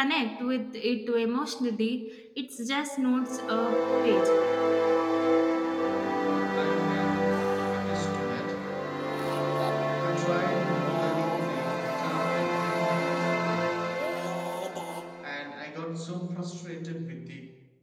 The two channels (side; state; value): both; identical; correlation 1.00